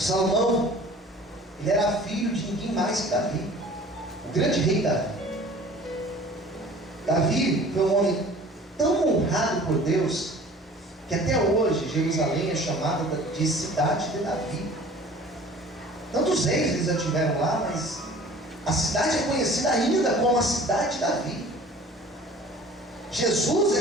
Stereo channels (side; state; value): both; normal; correlation 0.46